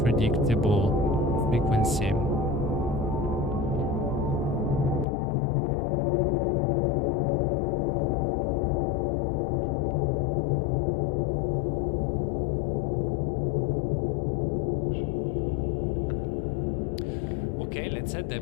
frequency. Okay, let's add the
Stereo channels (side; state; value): right; drops out; at 5.1 s